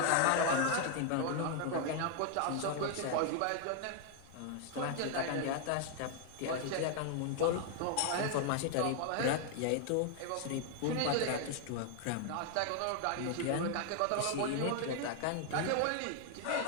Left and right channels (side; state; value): both; different; correlation 0.00